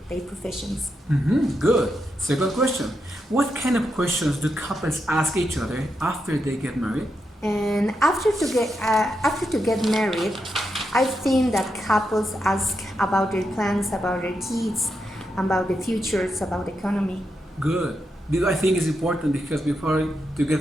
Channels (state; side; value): normal; both; correlation 0.84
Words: their professions. Good. Second question. What kind of questions do couples ask each other after they get married? And after to get married, I think that couples ask about their plans, about their kids, about the futures, about the economy. Good. I think it's important because before to